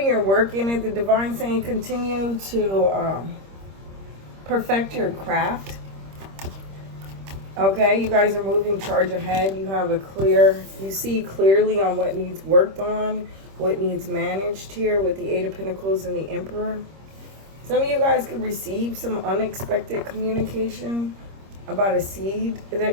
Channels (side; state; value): left; late; 26 ms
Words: your work in it. The divine saying continue to perfect your craft. Okay, you guys are moving charge ahead. You have you see clearly on what needs worked on, what needs managed here with the Eight of Pentacles and the Emperor. Some of you guys could receive some unexpected communication about a seed